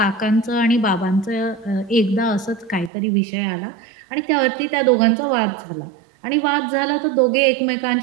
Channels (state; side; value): drops out; left; at 2.9 s